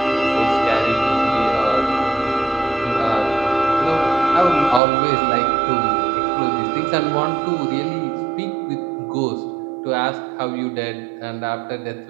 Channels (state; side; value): drops out; left; at 4.8 s